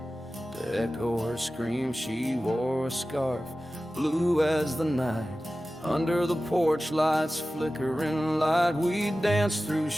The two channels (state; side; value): normal; both; correlation 0.95